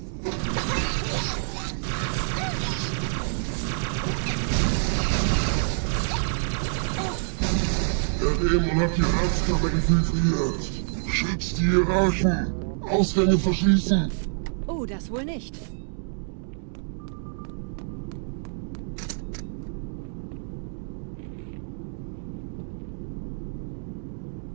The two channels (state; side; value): silent; left; digital silence